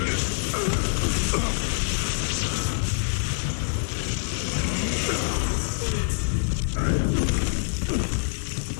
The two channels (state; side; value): silent; right; 61 dB below the other